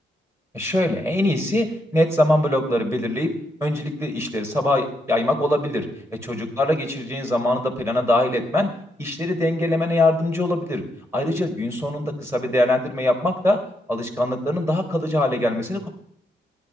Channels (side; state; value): both; normal; correlation 0.79